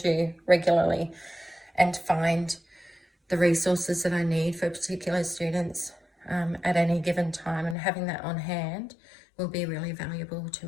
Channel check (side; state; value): right; drops out; at 7.8 s